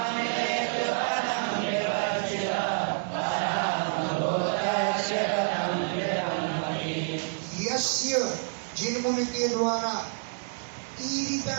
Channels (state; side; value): silent; left; 59 dB below the other